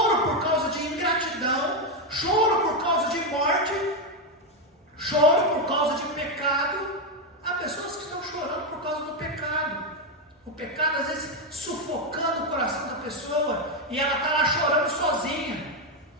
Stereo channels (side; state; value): both; normal; correlation 0.06